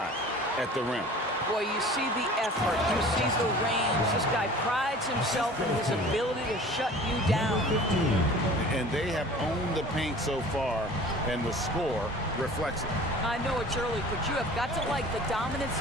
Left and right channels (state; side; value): normal; both; correlation 0.44